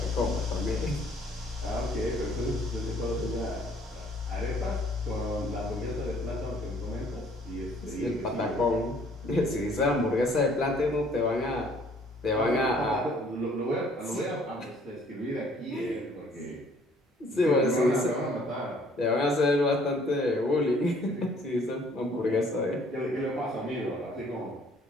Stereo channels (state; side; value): normal; both; correlation 0.59